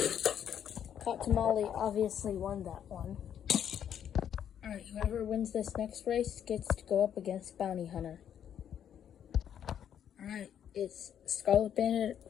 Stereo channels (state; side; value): quieter; right; 9.3 dB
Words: Hot Tamale obviously won that one. Alright, whoever wins this next race gets to go up against Bounty Hunter. Alright, it's Scarlet Bandit